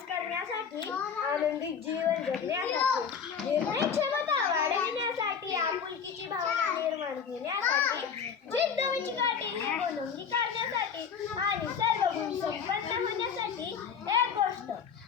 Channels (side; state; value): right; quieter; 6.8 dB